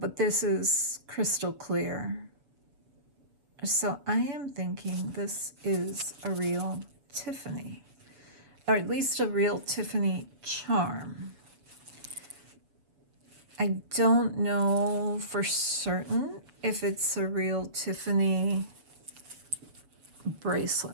this is crystal clear. So I am thinking this is a real Tiffany, or at least a real Tiffany charm. I don't know for certain if it's a real Tiffany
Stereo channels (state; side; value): late; left; 7.0 ms